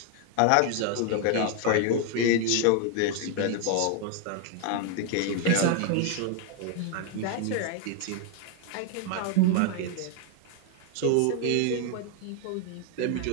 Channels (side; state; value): both; different; correlation 0.00